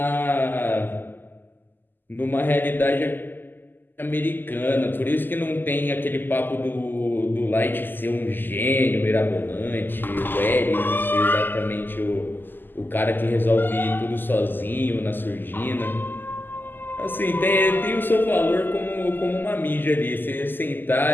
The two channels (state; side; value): late; right; 0.092 ms